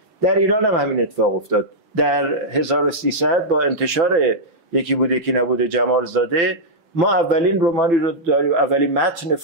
در ایران هم همین اتفاق افتاد. در 1300 با انتشار یکی بوده یکی نبوده جمال زاده، ما اولین رمانی رو داریم، اولین متن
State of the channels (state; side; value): late; left; 6.0 ms